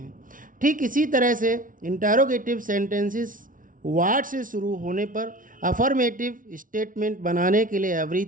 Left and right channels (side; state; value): left; late; 0.39 ms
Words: ठीक इसी तरह से इंटरोगेटिव सेंटेंसेस व्हाट से शुरू होने पर अफर्मेटिव स्टेटमेंट बनाने के लिए